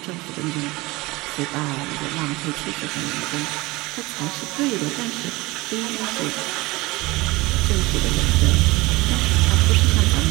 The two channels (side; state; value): left; quieter; 21.7 dB